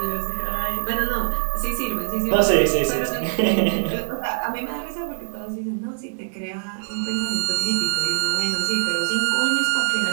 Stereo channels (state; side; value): silent; left; 63 dB below the other